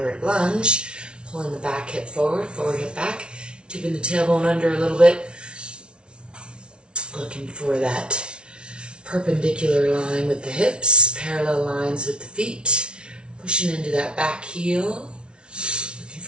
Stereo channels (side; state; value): left; late; 0.057 ms